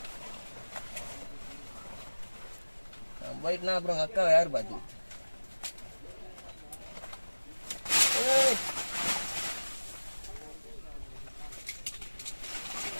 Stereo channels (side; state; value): both; inverted; correlation -1.00